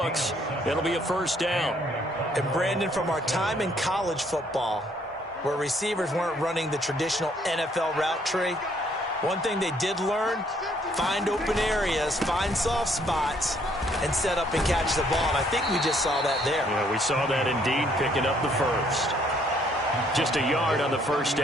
It'll be a first down. And Brandon, from our time in college football, where receivers weren't running the traditional NFL route tree, one thing they did learn, find open areas, find soft spots, and set up and catch the ball. And I think we just saw that there. Yeah, we saw that indeed, picking up the first. Just a yard on the first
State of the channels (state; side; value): normal; both; correlation 0.66